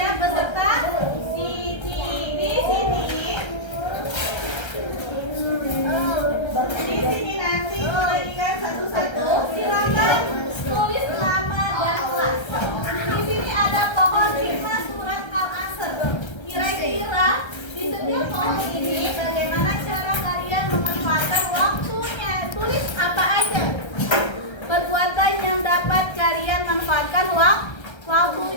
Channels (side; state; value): right; late; 1.3 ms